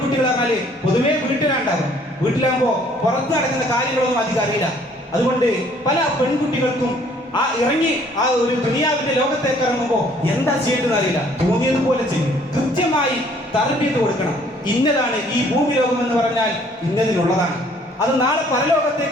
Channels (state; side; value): normal; both; correlation 0.60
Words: പറഞ്ഞാല് പൊതുവെ വീട്ടിലുണ്ടാകും. വീട്ടിലാകുമ്പോ പുറത്ത് നടക്കുന്ന കാര്യങ്ങളൊന്നും അധികം അറിയില്ല. അതുകൊണ്ട് പല പെൺകുട്ടികൾക്കും ഇറങ്ങി ആ ഒരു ദുനിയാവിന്റെ ലോകത്തേക്ക് ഇറങ്ങുമ്പോൾ എന്താ ചെയ്യേണ്ടതെന്ന് അറിയില്ല. തോന്നിയതുപോലെ ചെയ്യും. കൃത്യമായി തർബീയത്ത് കൊടുക്കണം. ഇന്നതാണ് ഈ ഭൂമി ലോകം എന്ന് പറഞ്ഞാൽ ഇന്നതിനുള്ളതാണ്. അത് നാളെ